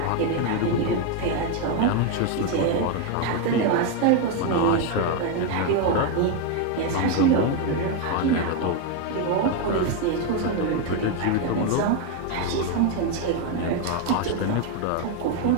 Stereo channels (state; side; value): different; both; correlation 0.02